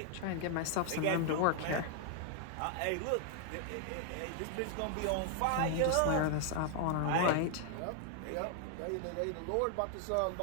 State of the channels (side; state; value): both; different; correlation 0.00